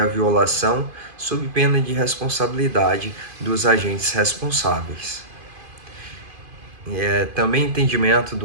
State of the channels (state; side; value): late; left; 2.5 ms